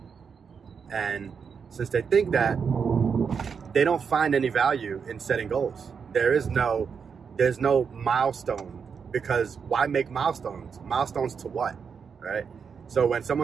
And since they think that, they don't find any value in setting goals. There's no milestone, because why make milestones? Milestones to what, right? So when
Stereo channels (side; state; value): left; quieter; 6.3 dB